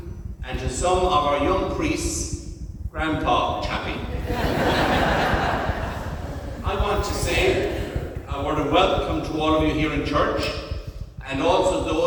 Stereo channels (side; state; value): both; identical; correlation 1.00